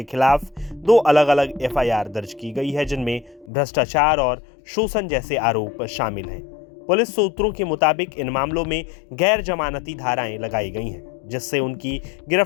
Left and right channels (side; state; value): right; drops out; at 3.5 s